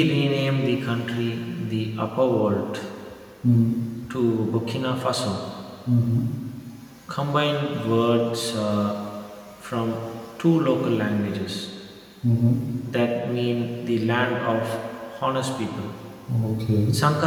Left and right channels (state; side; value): identical; both; correlation 1.00